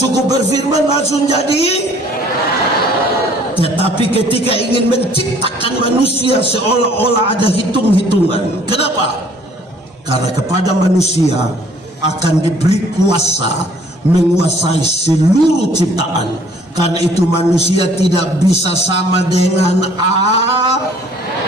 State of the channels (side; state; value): both; normal; correlation 0.57